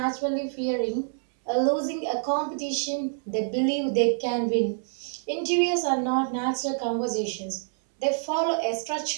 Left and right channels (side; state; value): left; silent; 60 dB below the other